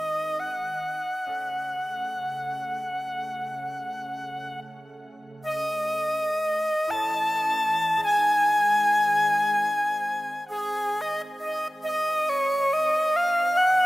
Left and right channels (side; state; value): both; normal; correlation 0.96